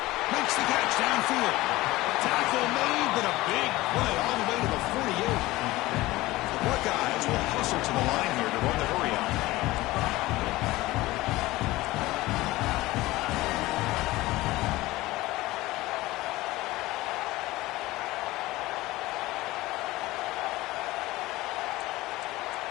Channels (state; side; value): quieter; right; 18.7 dB